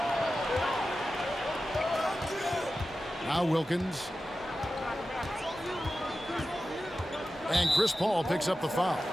Now Wilkins. And Chris Paul picks up the foul.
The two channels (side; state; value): both; normal; correlation 0.93